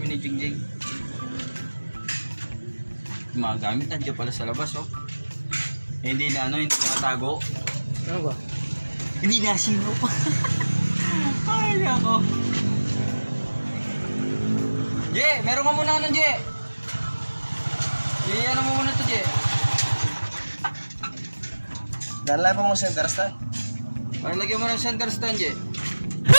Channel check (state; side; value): inverted; both; correlation -1.00